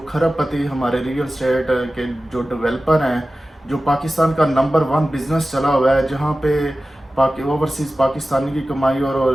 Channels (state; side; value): normal; both; correlation 0.95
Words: کھرب پتی ہمارے ریئل اسٹیٹ کے جو ڈیولپر ہیں، جو پاکستان کا نمبر 1 بزنس چلا ہوا ہے، جہاں پہ اوورسیز پاکستانی کی کمائی اور